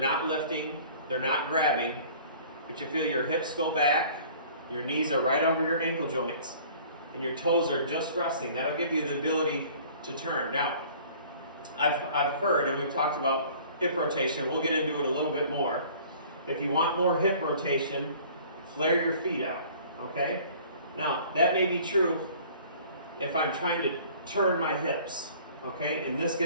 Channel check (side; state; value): both; inverted; correlation -0.50